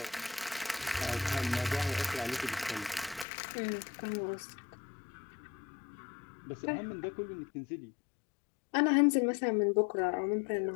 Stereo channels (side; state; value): right; drops out; at 3.2 s